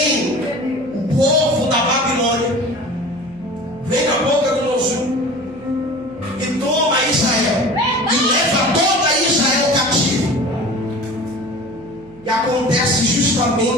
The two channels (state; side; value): noise; right; hum, 26 dB below the sound